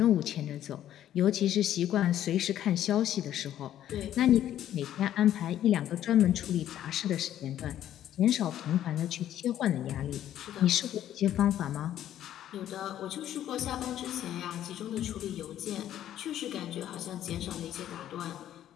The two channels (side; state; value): right; quieter; 11.6 dB